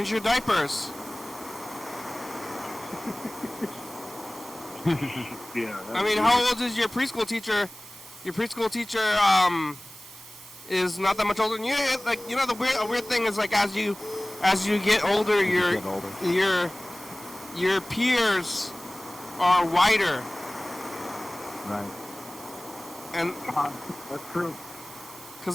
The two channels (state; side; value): noise; right; hiss, 18 dB below the sound